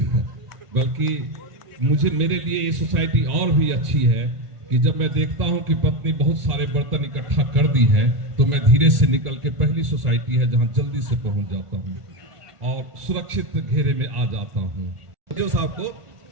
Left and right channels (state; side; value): late; left; 1.4 ms